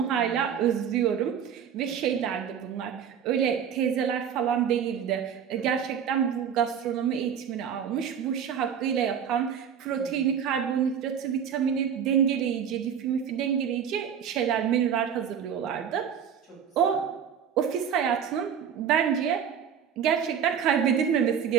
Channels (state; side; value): quieter; left; 8.1 dB